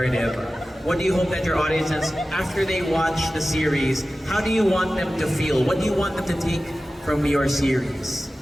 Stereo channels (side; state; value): both; normal; correlation 0.95